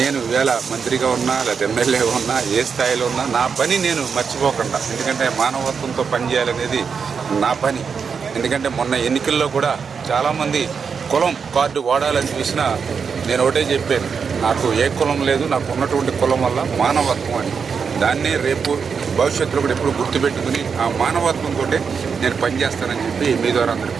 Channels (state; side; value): quieter; left; 6.0 dB